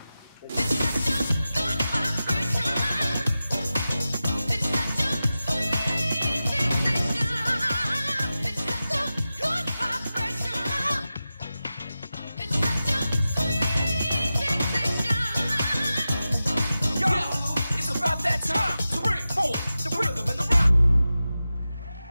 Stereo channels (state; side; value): inverted; both; correlation -0.93